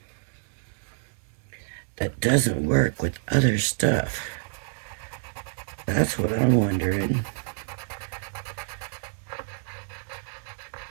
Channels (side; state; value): left; silent; digital silence